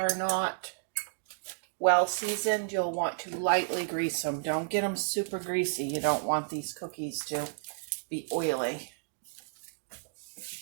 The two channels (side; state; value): left; silent; digital silence